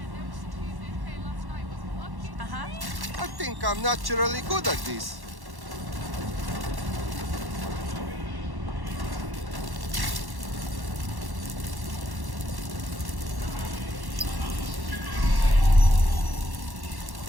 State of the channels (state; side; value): late; left; 1.1 ms